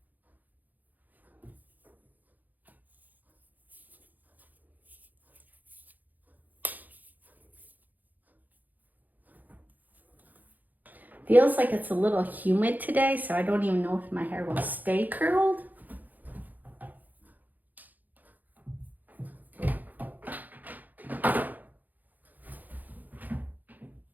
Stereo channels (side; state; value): left; late; 0.083 ms